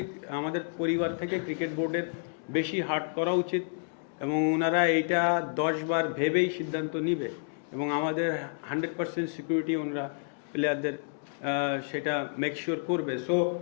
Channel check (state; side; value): silent; right; digital silence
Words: আমাদের পরিবার থেকে ক্রিকেট বোর্ডের বেশি হার্ট করা উচিত, এবং ওনারা এইটা 10 বার ভেবেই সিদ্ধান্ত নিবে, এবং আমাদের 100% সিকিউরিটি ওনারা প্লেয়ারদের সেটা মেক শিওর করবে। সো